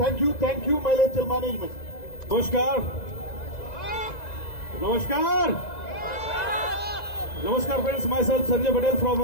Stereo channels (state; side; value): late; right; 2.0 ms